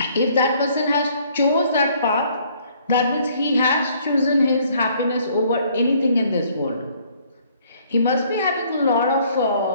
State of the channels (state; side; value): inverted; both; correlation -0.62